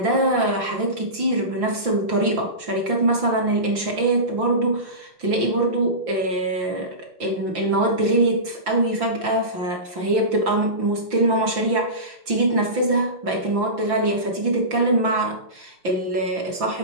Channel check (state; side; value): late; left; 5.8 ms